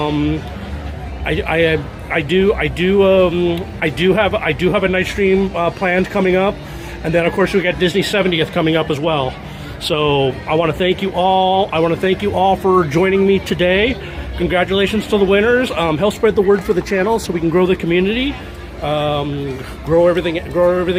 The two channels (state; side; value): identical; both; correlation 1.00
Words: do have a night stream planned coming up, and then of course we got Disney 70th coming up as well. So I want to thank you all. For joining me today. Congratulations to the winners. Help spread the word for the channel so we can grow the community, grow